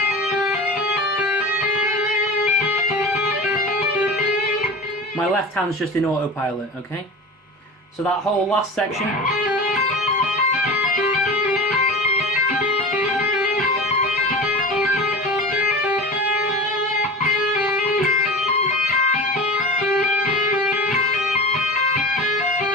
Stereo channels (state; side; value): normal; both; correlation 0.31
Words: My left hand's just in autopilot, okay? So that whole last section.